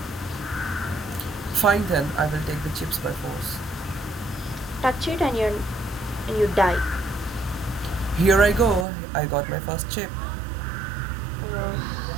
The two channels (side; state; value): left; drops out; at 8.8 s